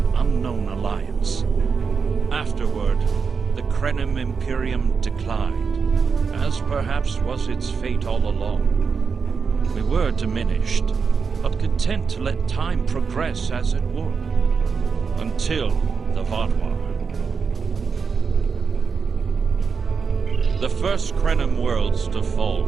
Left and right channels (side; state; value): left; quieter; 5.5 dB